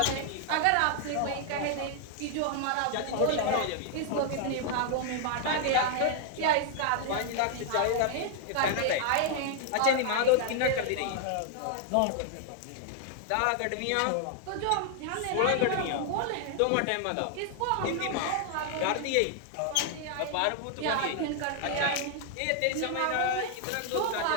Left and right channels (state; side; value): different; both; correlation 0.00